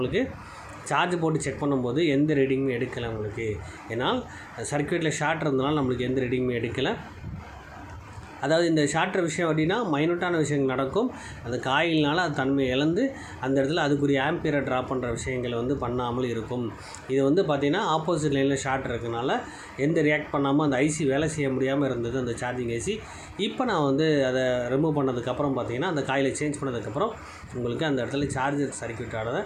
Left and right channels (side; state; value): both; identical; correlation 1.00